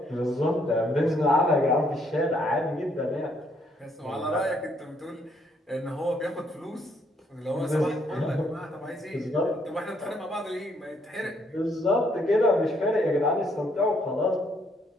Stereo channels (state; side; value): normal; both; correlation 0.70